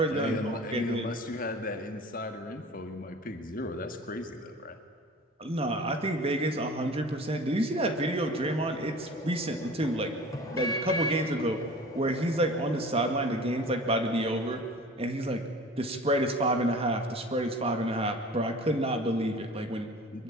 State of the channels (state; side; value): normal; both; correlation 0.41